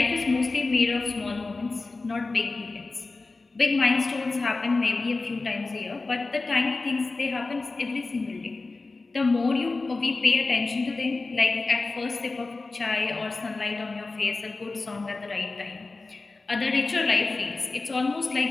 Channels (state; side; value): quieter; right; 3.6 dB